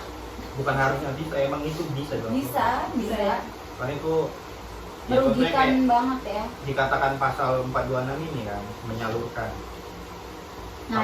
Bukan harusnya bisa, emang itu bisa dong. Bisa ya. Karena itu ya, contohnya Merugikan kayak banget ya. dikatakan pasal 426 ini kan, menyalurkan. Nah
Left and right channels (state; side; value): identical; both; correlation 1.00